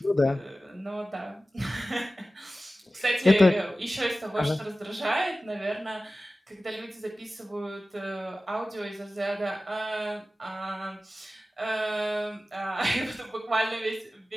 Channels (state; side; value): normal; both; correlation 0.96